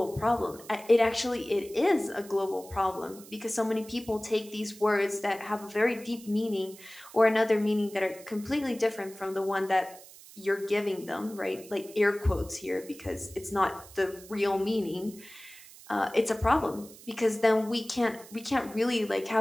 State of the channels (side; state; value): right; noise; hiss, 19 dB below the sound